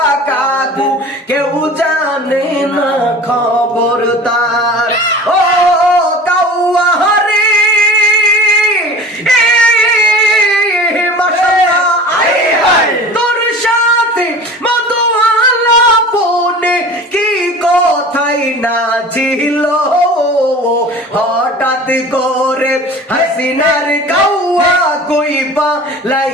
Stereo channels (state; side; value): normal; both; correlation 0.40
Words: কাকু কেউ জানে না খবর তার ও কাউয়া হরি তোর সাথে মধুয়ালা পনে কি কথাই না ছিল হঠাৎ করে হাসিনার কাউয়া কইবা